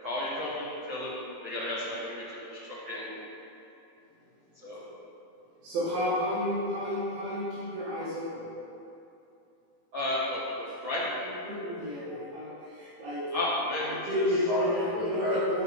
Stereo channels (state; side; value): late; left; 18 ms